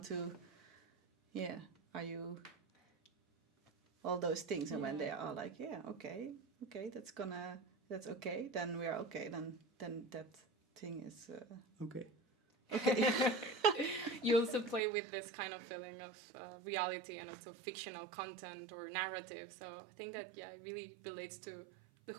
to? Yeah. Are you? All those things, and when they are like, yeah, okay, that's okay. Then we are okay. Then that thing is Okay. okay. You also play with this kind of feeling of reality and also fictional content or narrative. So I think that, yeah, it really relates to the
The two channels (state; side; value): drops out; left; at 14.8 s